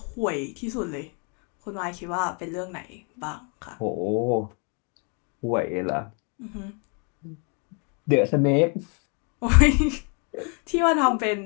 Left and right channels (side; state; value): right; quieter; 37.4 dB